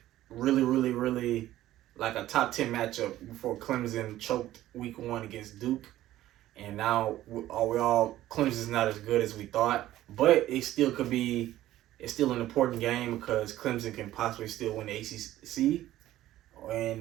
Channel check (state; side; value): quieter; left; 14.3 dB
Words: really, really, really like a top 10 matchup before Clemson choked week 1 against Duke. And now Clemson's not as good as we thought, but it's still an important game because Clemson can possibly still win the ACC.